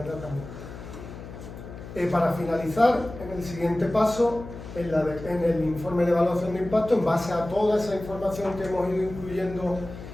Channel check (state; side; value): noise; left; hum, 13 dB below the sound